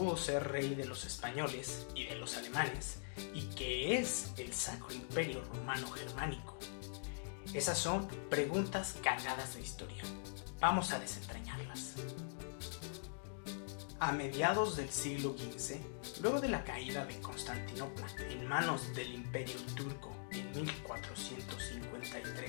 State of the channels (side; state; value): right; silent; digital silence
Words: ser rey de los españoles y de los alemanes? ¿Y qué es el Sacro Imperio Romano Germánico? Esas son preguntas cargadas de historia. Vamos a desentrañarlas. A mediados del siglo XV, luego de la caída de Constantinopla en manos del Imperio Turco en